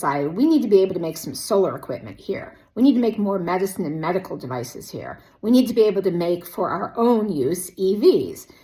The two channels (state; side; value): identical; both; correlation 1.00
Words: we need to be able to make some solar equipment here. We need to make more medicine and medical devices here. We need to be able to make for our own use EVs.